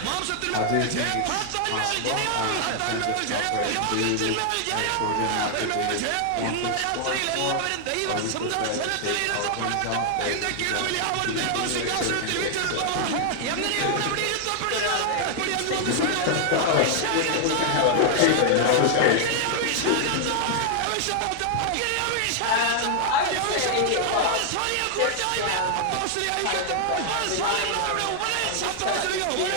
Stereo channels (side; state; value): both; different; correlation 0.00